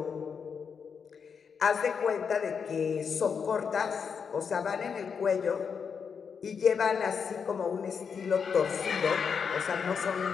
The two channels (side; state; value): right; quieter; 6.4 dB